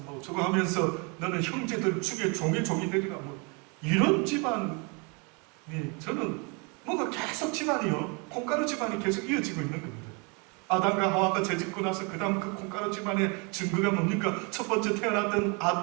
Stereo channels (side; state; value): left; quieter; 32.3 dB